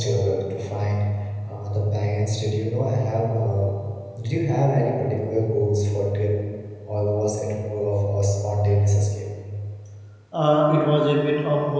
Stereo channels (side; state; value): both; identical; correlation 1.00